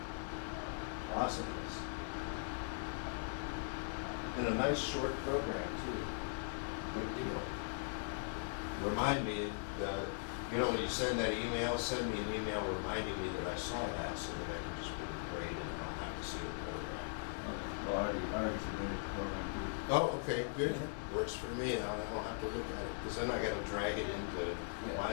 Awesomeness. And a nice short program too. Good deal. Remind me, when you send that email, send me an email reminding me that I saw that so that I can just put a grade and I don't have to see the program. Okay. Well, I already submitted the program too. Oh, okay, good. Works for me. I don't have to look at it because then I got to drag it into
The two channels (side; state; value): right; silent; digital silence